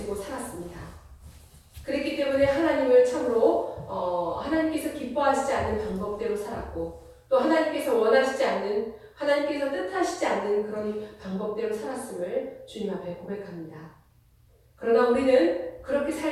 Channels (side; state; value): both; identical; correlation 1.00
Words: 살았습니다. 그랬기 때문에 하나님을 참으로 하나님께서 기뻐하시지 않는 방법대로 살았고 또 하나님께서 원하시지 않는 하나님께서 뜻하시지 않는 그런 방법대로 살았음을 주님 앞에 고백합니다. 그러나 우리는 그렇게